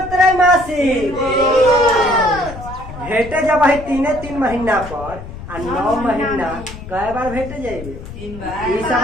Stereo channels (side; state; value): left; noise; rumble, 12 dB below the sound